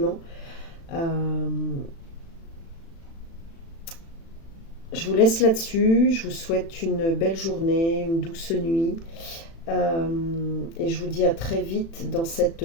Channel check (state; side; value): late; right; 36 ms